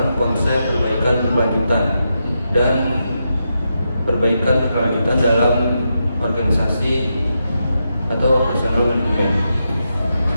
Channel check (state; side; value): inverted; both; correlation -0.85